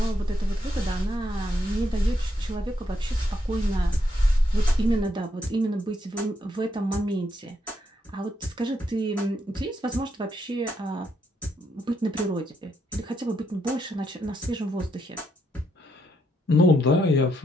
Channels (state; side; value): normal; both; correlation 0.77